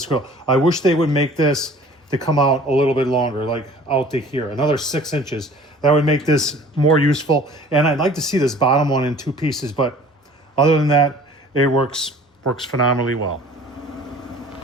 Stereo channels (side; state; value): both; normal; correlation 0.48